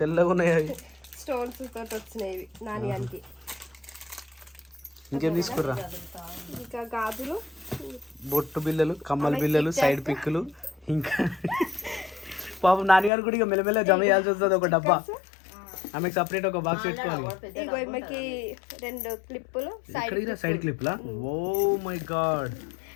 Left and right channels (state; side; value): drops out; right; at 13.1 s